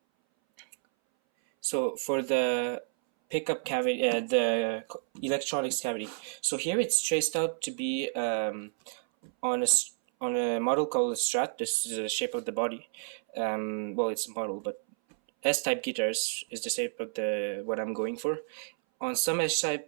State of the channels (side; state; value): left; silent; 58 dB below the other